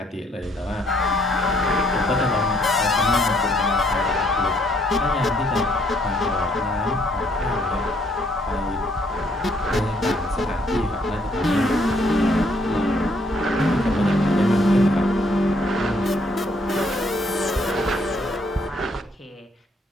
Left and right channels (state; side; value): normal; both; correlation 0.68